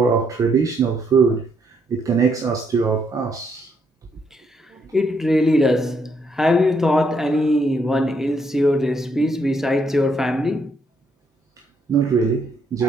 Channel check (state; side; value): normal; both; correlation 0.74